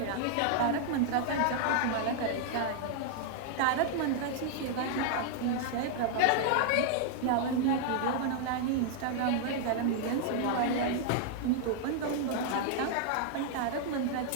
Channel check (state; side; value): different; both; correlation 0.00